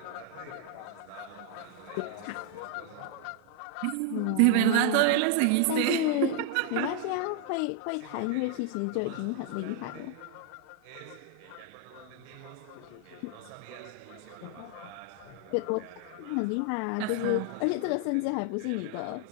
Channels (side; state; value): both; different; correlation 0.00